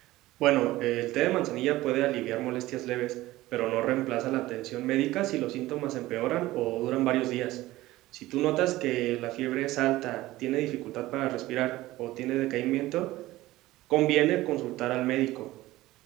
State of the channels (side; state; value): left; quieter; 17.3 dB